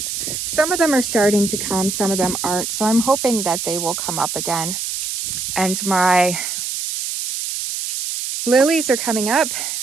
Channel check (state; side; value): noise; right; hiss, 4 dB below the sound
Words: some of them are starting to come, some of them aren't. So I'm hoping that they will come up again. And my lilies are coming up.